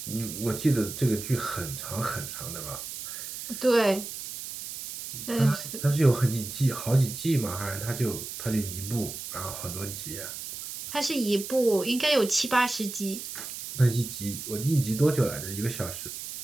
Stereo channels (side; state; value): right; noise; hiss, 8 dB below the sound